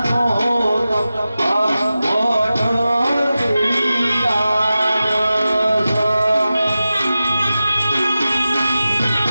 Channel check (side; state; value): both; inverted; correlation -0.94